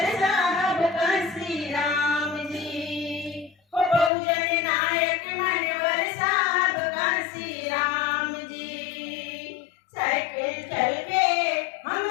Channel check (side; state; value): right; drops out; at 4.1 s